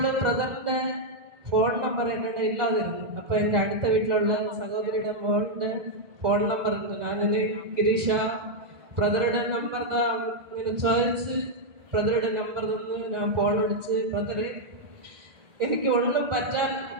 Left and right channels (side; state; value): left; late; 1.7 ms